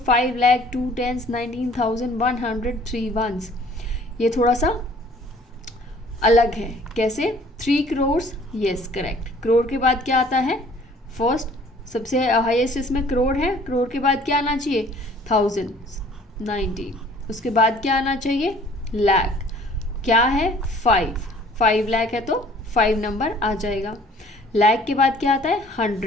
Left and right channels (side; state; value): both; normal; correlation 0.54